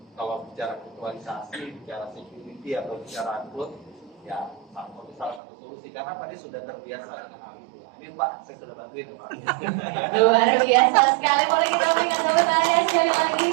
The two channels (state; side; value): drops out; left; at 5.4 s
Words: kalau bicara virtualisasi, bicara security atau bicara cloud, ya Sampo itu salah satu solusi karena Pak dia sudah terbiasa dengan hal itu. Ini Pak, saya sudah bantuin Pak. Luar biasa sekali. Boleh kita berikan tepuk tangan sekali lagi.